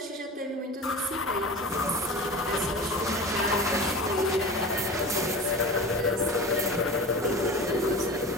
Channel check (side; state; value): both; normal; correlation 0.33